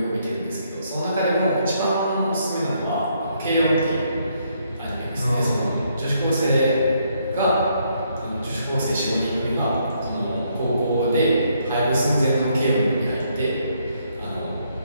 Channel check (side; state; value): both; inverted; correlation -0.72